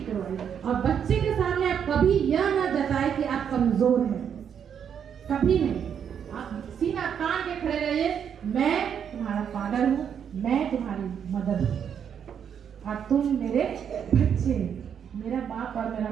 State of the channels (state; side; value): quieter; left; 8.1 dB